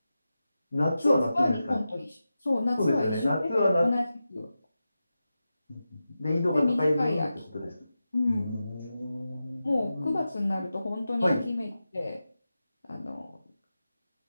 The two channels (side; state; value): both; inverted; correlation -0.92